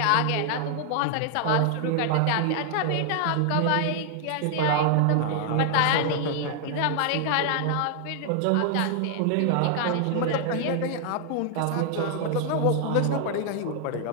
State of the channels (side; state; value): both; different; correlation 0.00